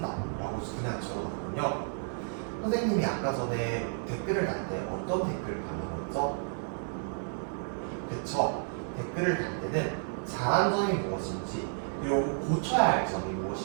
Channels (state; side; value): silent; left; digital silence